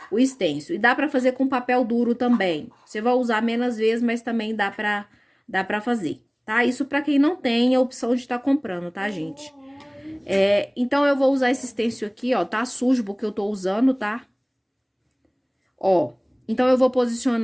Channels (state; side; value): identical; both; correlation 1.00